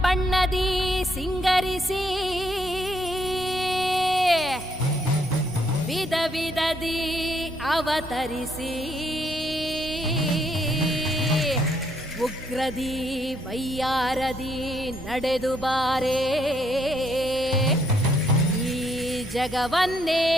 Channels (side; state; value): both; normal; correlation 0.72